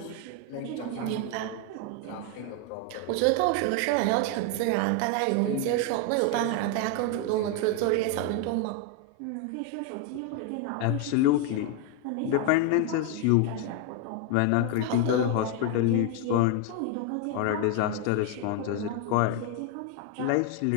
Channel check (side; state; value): both; different; correlation 0.01